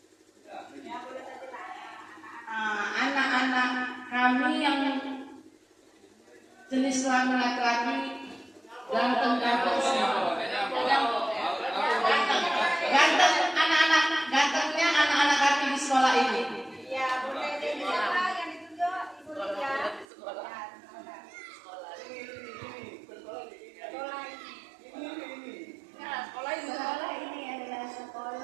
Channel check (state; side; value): drops out; left; at 20.1 s